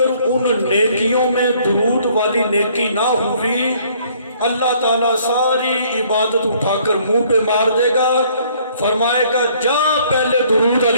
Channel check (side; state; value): both; inverted; correlation -0.61